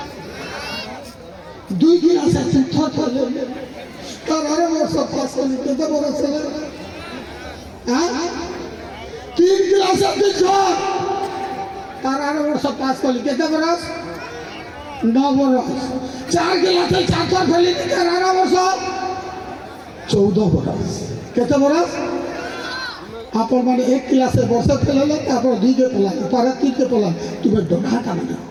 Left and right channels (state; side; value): identical; both; correlation 1.00